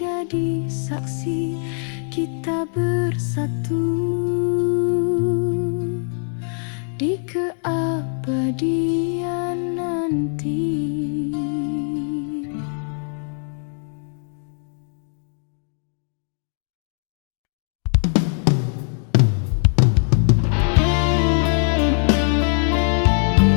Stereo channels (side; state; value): right; silent; 61 dB below the other